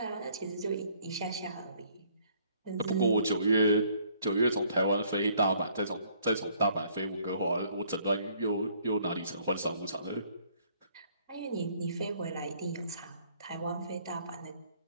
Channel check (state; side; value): inverted; both; correlation -0.63